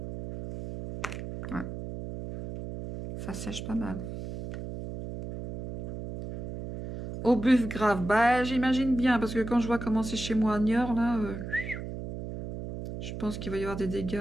Ouais. Ça sèche pas mal. Au buff grave, bah j'imagine bien, parce que quand je vois comment c'est chez moi à Niort, là, je pense qu'il va y avoir des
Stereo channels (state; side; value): noise; right; hum, 7 dB below the sound